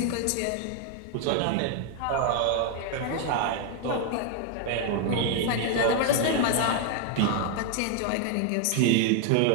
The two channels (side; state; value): both; different; correlation 0.00